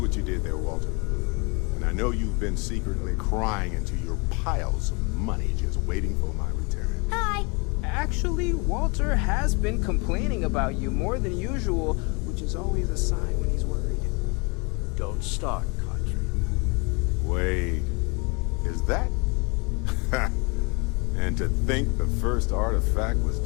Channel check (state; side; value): quieter; right; 31.1 dB